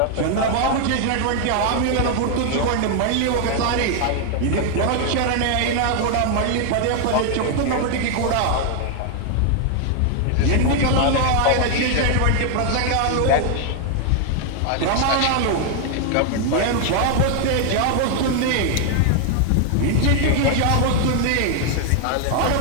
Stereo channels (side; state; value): both; different; correlation 0.00